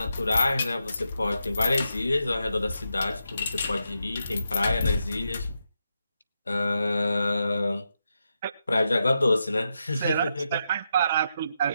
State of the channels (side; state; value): both; inverted; correlation -0.85